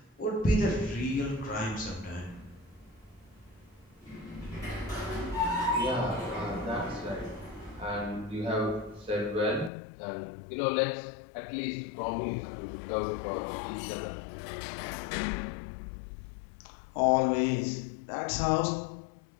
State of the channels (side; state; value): right; drops out; at 9.7 s